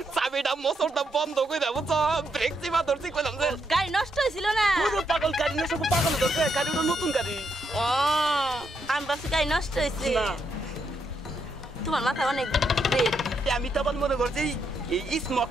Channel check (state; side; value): normal; both; correlation 0.78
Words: চাবিটা মোটরটা বন্ধ করে দেবো বুঝছো ব্রেক চিপা ধরছি কইলাম যে গাড়ি নষ্ট হয়েছিল না পুরো পাগল গাড়ি না সব পাগল ধরছে গাড়িটা নতুন গাড়ি ও আমি ভাবছি গাড়ি নষ্ট হয়েছে না তোমার মাথা অনেক রেড আমি তখন মনে করছি এই